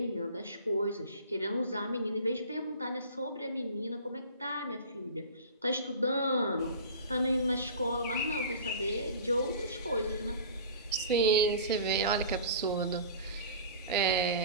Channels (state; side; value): inverted; both; correlation -0.39